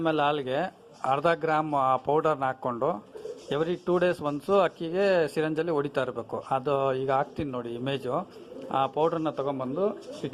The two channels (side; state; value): both; identical; correlation 1.00